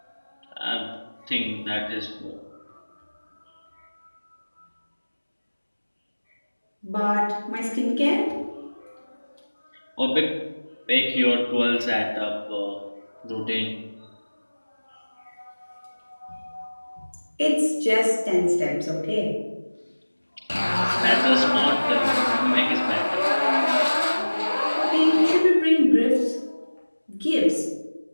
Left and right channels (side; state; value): both; inverted; correlation -1.00